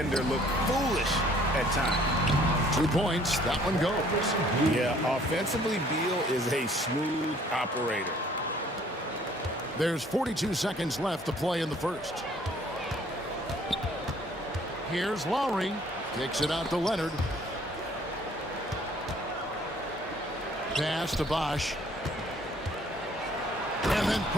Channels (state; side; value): normal; both; correlation 0.58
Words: look foolish at times. 2 points. That one goes. Yeah, offensively, Beal is a smooth operator. There's 42 seconds left to play in the first. Here's Lowry. Kicks it out to Leonard. Pass to Bosh. And And